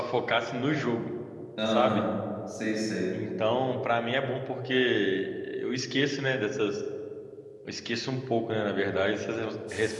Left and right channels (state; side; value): identical; both; correlation 1.00